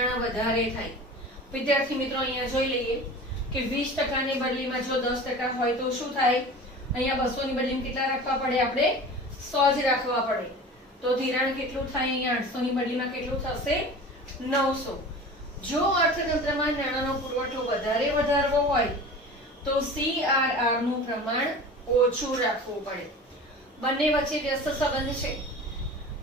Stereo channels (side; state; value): both; normal; correlation 0.37